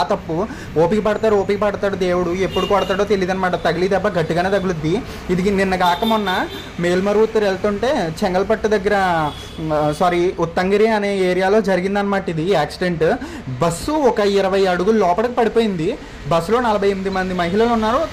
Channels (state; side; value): identical; both; correlation 1.00